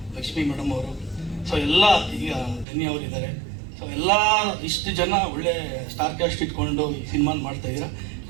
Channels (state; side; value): drops out; left; at 2.7 s